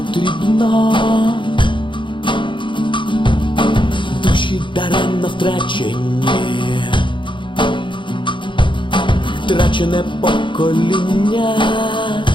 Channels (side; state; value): right; late; 0.23 ms